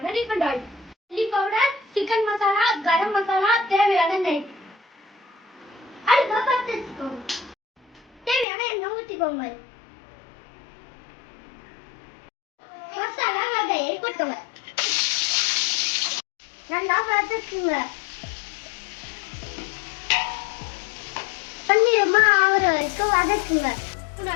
refined oil, chilli powder, chicken masala, garam masala, தேவையான நெய். அடுப்பை பற்ற வச்சுக்கோங்க. தேவையான எண்ணெய் ஊற்றிக்கோங்க. மசாலா வகையை கொட்டுங்க. நல்லா வதக்குங்க. பன்னிரமா ஆகிற வரைக்கும் வதக்குங்க.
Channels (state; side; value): drops out; right; at 8.5 s